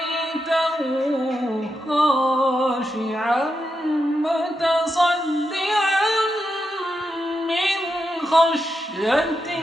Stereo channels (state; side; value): normal; both; correlation 0.86